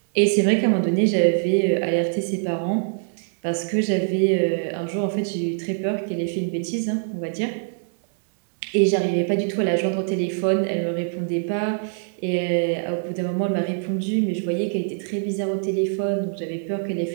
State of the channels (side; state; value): left; silent; digital silence